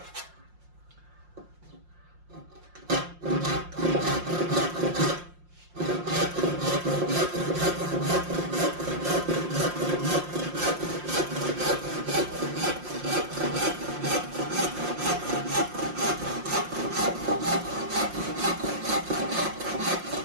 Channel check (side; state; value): left; late; 5.7 ms